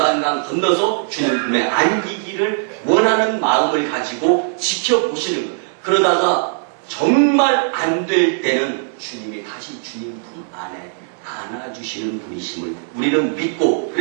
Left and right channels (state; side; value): silent; left; digital silence